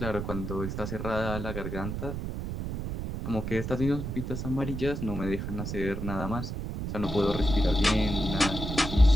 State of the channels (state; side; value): noise; right; rumble, 5 dB below the sound